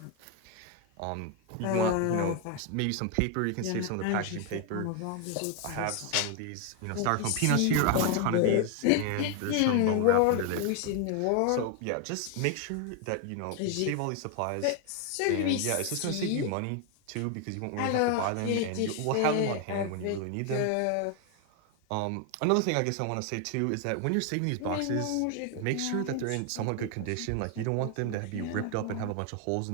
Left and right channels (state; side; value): different; both; correlation 0.01